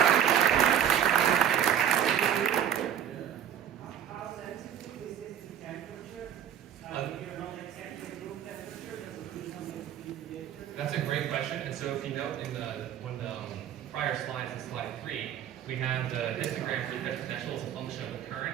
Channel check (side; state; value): left; quieter; 9.6 dB